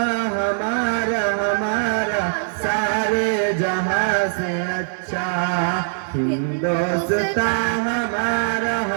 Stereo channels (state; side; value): silent; left; digital silence